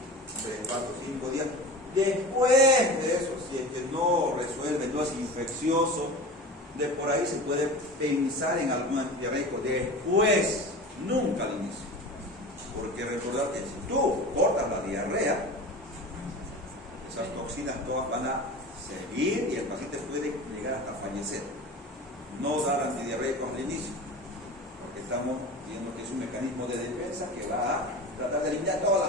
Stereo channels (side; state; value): both; normal; correlation 0.33